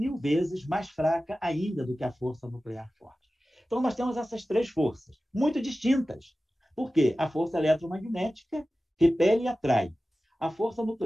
vezes mais fraca ainda do que a força nuclear forte. Então, nós temos essas três forças, muito distintas. Por quê? A força eletromagnética repele e atrai. A força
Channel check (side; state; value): both; normal; correlation 0.95